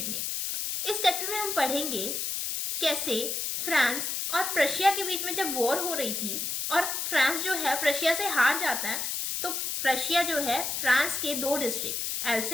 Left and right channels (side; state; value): left; noise; hiss, 2 dB below the sound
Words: ने। इस चैप्टर में हम पढ़ेंगे कैसे फ्रांस और प्रशिया के बीच में जब वॉर हो रही थी और फ्रांस जो है प्रशिया से हार जाता है, तो प्रशिया जो है फ्रांस के 2 डिस्ट्रिक्ट